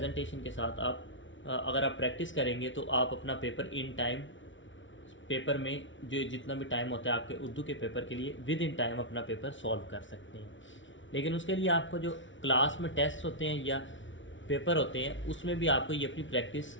کے ساتھ آپ اگر آپ پریکٹس کریں گے تو آپ اپنا پیپر ان ٹائم، پیپر میں جو جتنا بھی ٹائم ہوتا ہے آپ کے اردو کے پیپر کے لیے ود ان ٹائم اپنا پیپر سولو کر سکتے ہیں۔ لیکن اس کے لیے آپ کو جو کلاس میں ٹیسٹ ہوتے ہیں یا پیپر ہوتے ہیں اس میں بھی آپ کو یہ اپنی پریکٹس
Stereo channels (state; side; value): late; right; 0.56 ms